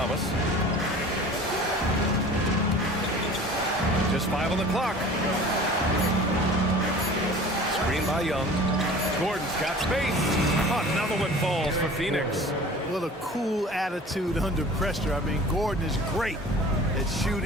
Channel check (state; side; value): normal; both; correlation 0.43